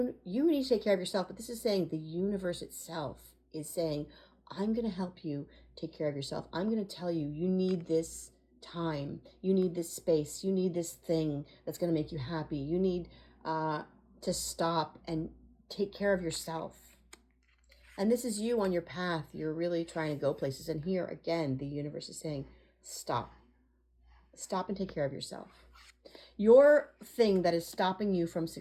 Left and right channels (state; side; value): identical; both; correlation 1.00